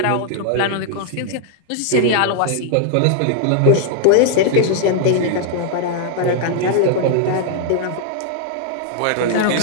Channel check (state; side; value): different; both; correlation -0.01